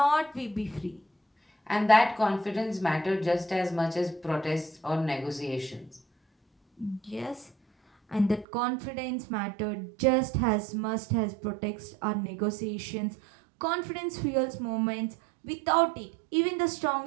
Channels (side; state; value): left; drops out; at 8.5 s